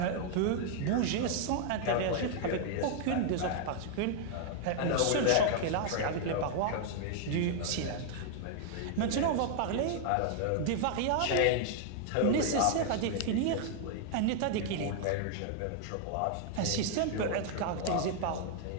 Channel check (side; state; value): both; different; correlation 0.00